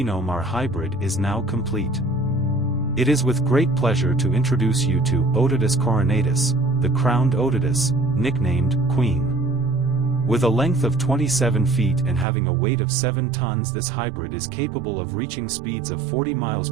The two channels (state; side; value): drops out; left; at 12.2 s